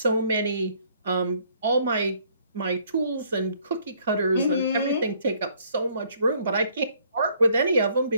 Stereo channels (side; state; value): both; inverted; correlation -0.64